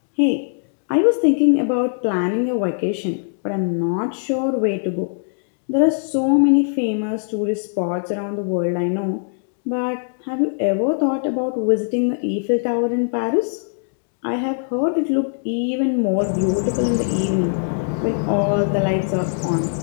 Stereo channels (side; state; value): right; silent; digital silence